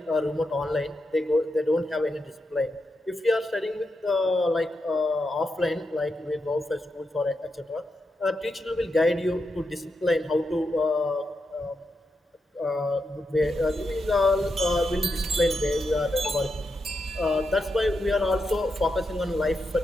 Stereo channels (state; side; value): normal; both; correlation 0.85